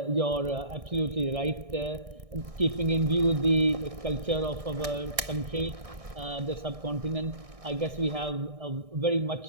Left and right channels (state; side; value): late; left; 1.6 ms